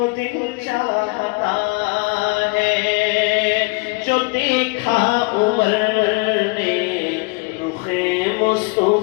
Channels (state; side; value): quieter; right; 27.6 dB